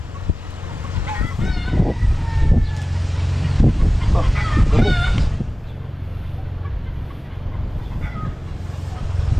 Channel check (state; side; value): normal; both; correlation 0.97